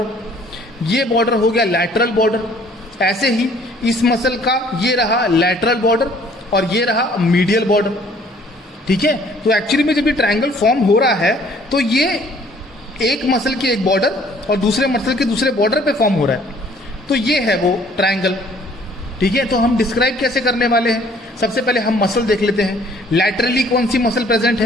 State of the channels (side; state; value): both; normal; correlation 0.58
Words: ये बॉर्डर हो गया लैटरल बॉर्डर। ऐसे ही इस मसल का ये रहा लैटरल बॉर्डर और ये रहा मीडियल बॉर्डर। ठीक है, तो एक्चुअली में जब ये ट्रायंगल फॉर्म हो रहा है तो ये एक मसल के एक बॉर्डर और दूसरे मसल के दूसरे बॉर्डर पे फॉर्म हो रहा है, तो ये है वो ट्रायंगल। ठीक है, तो हम डिस्क्राइब कैसे करने वाले हैं? सबसे पहले हम मसल देख लेते हैं। लैटरली कौन सी मसल प्रेजेंट